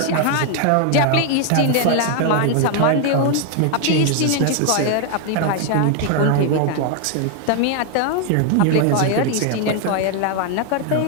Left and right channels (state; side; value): different; both; correlation 0.00